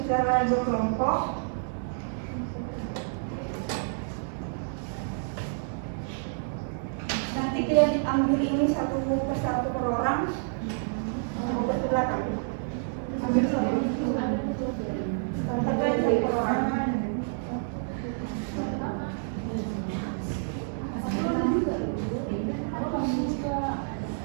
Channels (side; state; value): left; silent; digital silence